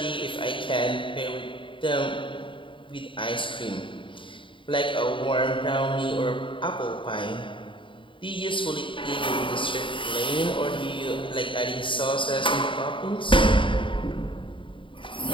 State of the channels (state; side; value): late; right; 0.25 ms